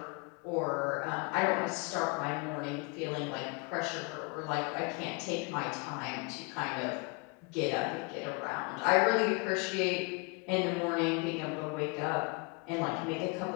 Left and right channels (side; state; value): right; quieter; 31.2 dB